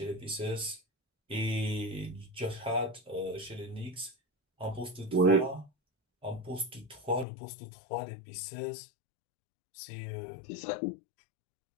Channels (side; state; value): right; drops out; at 7.2 s